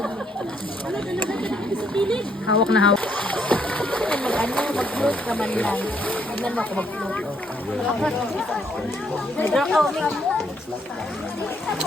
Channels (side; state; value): both; normal; correlation 0.71